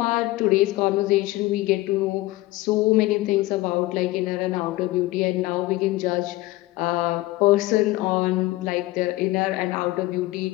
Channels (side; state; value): right; quieter; 18.7 dB